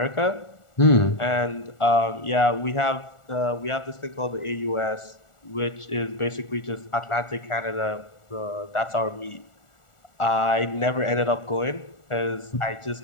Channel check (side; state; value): right; late; 1.4 ms